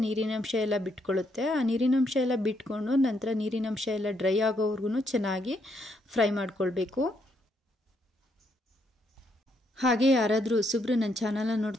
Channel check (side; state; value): both; normal; correlation 0.75